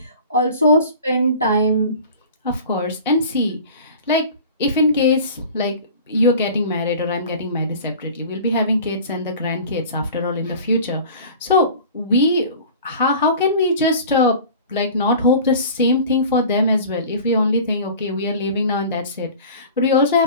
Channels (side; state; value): both; inverted; correlation -0.41